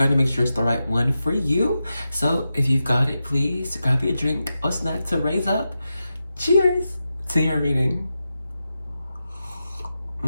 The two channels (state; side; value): inverted; both; correlation -0.90